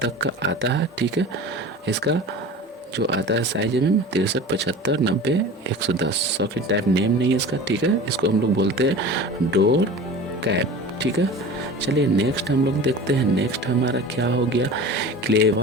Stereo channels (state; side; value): normal; both; correlation 0.36